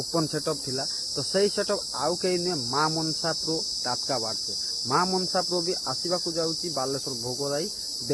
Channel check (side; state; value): both; identical; correlation 1.00